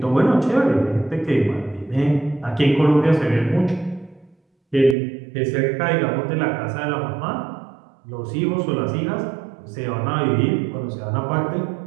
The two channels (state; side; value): drops out; left; at 5.0 s